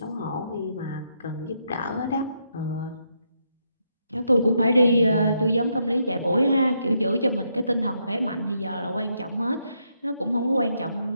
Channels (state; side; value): inverted; both; correlation -0.78